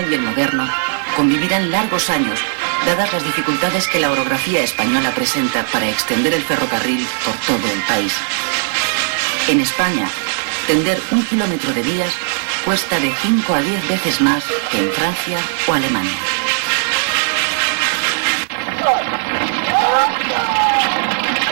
y el moderno, convivirán largos años, dadas las dificultades que la orografía española presenta para extender el ferrocarril por todo el país. En España, tender 1 kilómetro de vías cuesta de 5 a 10 veces más que en Francia o Alemania.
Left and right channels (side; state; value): left; silent; digital silence